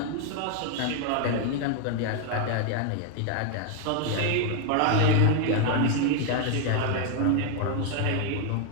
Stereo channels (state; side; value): different; both; correlation 0.01